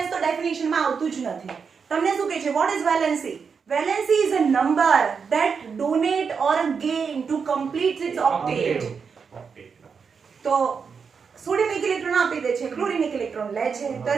તો ડેફિનેશન માં આવતું જ નથી તમને શું કહે છે what is valency valency is a number that donate or gain to complete its octet તો સોડિયમ એક ઇલેક્ટ્રોન આપી દે છે ક્લોરીન એક ઇલેક્ટ્રોન લે છે તો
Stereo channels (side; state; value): left; quieter; 5.9 dB